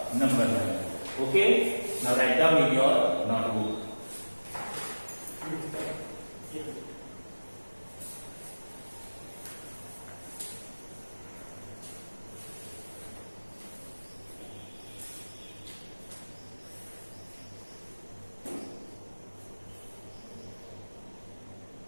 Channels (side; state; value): both; inverted; correlation -1.00